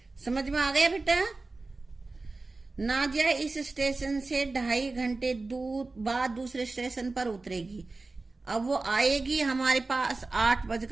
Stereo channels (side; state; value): left; quieter; 3.5 dB